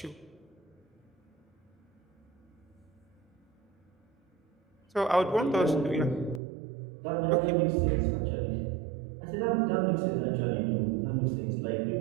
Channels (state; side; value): drops out; left; at 6.4 s